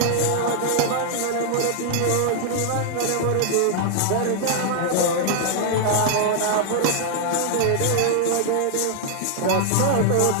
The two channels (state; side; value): different; both; correlation 0.00